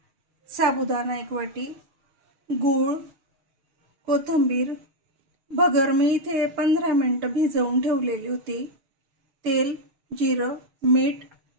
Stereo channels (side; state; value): left; late; 6.7 ms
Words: साबुदाणा 1 वाटी, गूळ, कोथिंबीर, भगर मी इथे 15 मिनिटं भिजवून ठेवलेली होती, तेल, जिरं, मीठ,